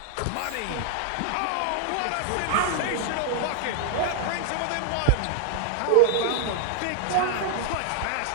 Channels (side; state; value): both; different; correlation -0.01